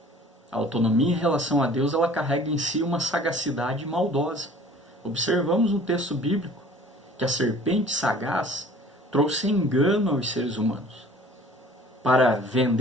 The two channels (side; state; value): both; normal; correlation 0.49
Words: A autonomia em relação a Deus, ela carrega em si uma sagacidade maldosa. Observamos no texto bíblico que a serpente sagaz trouxe engano aos seres humanos para